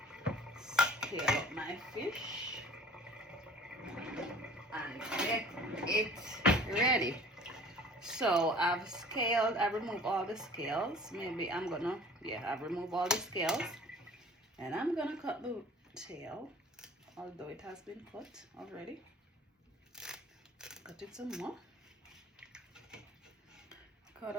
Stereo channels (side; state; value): both; normal; correlation 0.48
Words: scale up my fish and get it ready. So I've removed all the scales. I've removed all the scales and I'm gonna cut the tail, although it has been cut already. Cut it some more. Cut